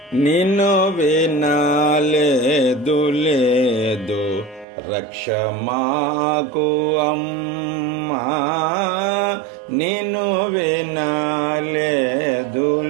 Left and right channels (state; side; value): drops out; left; at 4.7 s